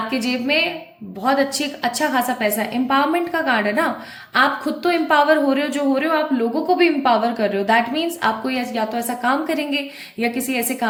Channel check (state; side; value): identical; both; correlation 1.00